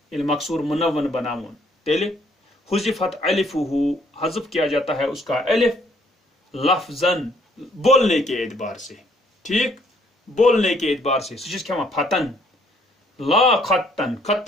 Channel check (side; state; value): both; normal; correlation 0.65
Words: मकसूर मुनव्वन बनावन तेले हुज़िफत अलिफुहु हज़फ किया जाता है उसका अलिफ लफ्जन बोलने के एतबार से ठीक बोलने के एतबार से सुचिस क्या फतन ला खत्तन